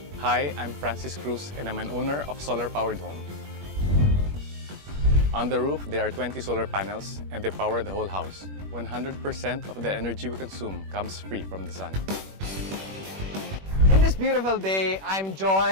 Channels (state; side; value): late; left; 21 ms